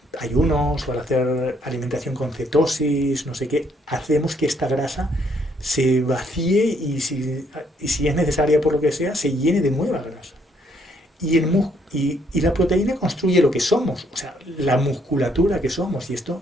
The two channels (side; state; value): both; normal; correlation 0.69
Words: ayunos o al hacer alimentación con cetosis, no sé qué, hacemos que esta grasa se vacíe y si es necesaria por lo que sea, se llene de nueva grasa. Y la proteína construye lo que somos, o sea, la musculatura que somos. Y esto,